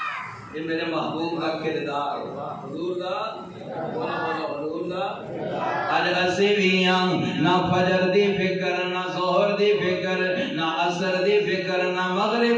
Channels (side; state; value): both; identical; correlation 1.00